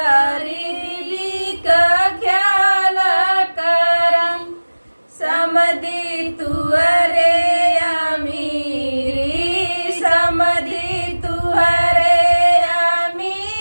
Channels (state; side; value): inverted; both; correlation -1.00